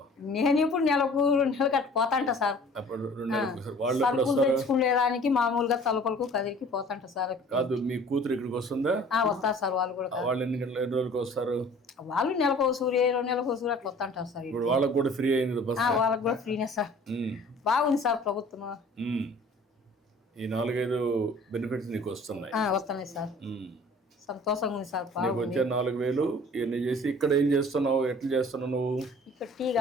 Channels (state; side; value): normal; both; correlation 0.49